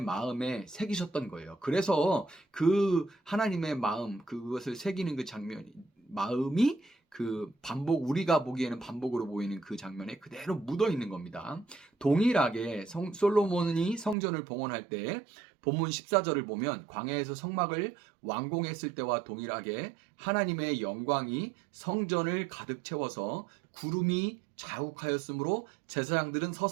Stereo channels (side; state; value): left; drops out; at 14.2 s